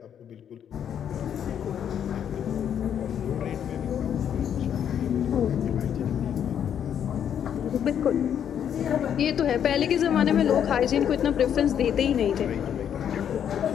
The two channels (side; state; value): right; quieter; 9.0 dB